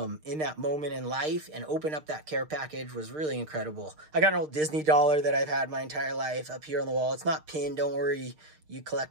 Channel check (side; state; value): left; late; 6.6 ms